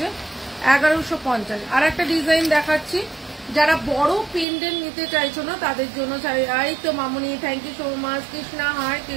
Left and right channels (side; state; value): left; drops out; at 4.5 s